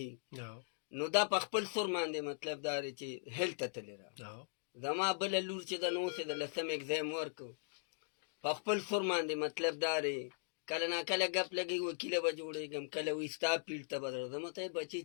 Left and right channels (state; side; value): silent; right; digital silence